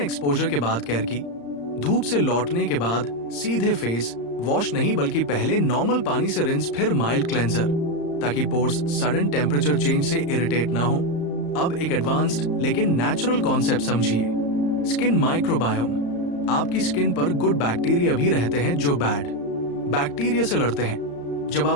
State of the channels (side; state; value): right; late; 35 ms